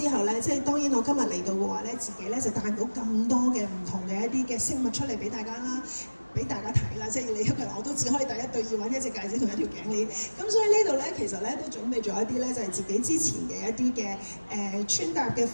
後咧，即係當然我今日嚟到嘅話咧，自己咧就帶唔到咁多嘅唔同嘅一啲嘅飾物出嚟俾大家啦。俾大家睇啦，即係你一個人我都只可以戴一對耳環、一隻戒指同一條頸鏈。咁所以呢度咧，其實咧都準備咗一啲咧，就係自己之前嘅一啲嘅穿搭嘅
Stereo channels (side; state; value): both; inverted; correlation -1.00